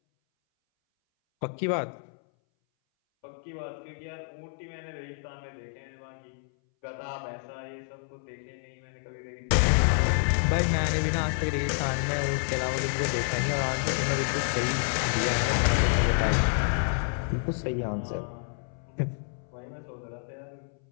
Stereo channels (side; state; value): right; silent; 59 dB below the other